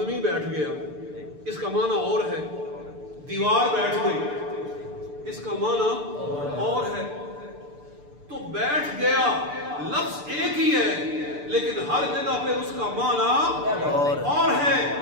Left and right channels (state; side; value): late; left; 6.8 ms